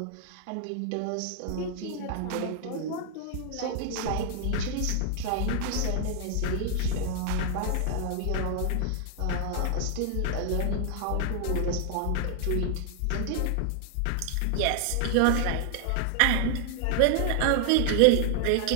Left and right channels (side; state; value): both; different; correlation 0.00